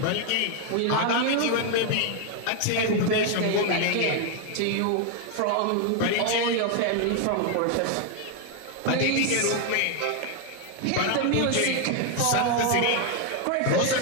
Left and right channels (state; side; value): different; both; correlation 0.00